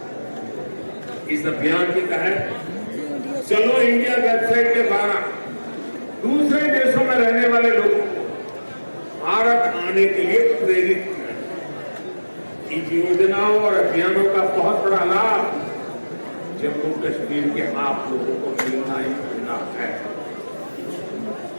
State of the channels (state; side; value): inverted; both; correlation -1.00